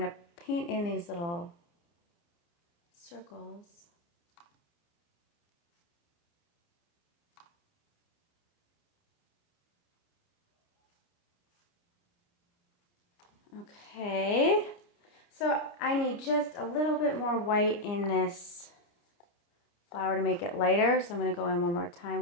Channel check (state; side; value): late; right; 29 ms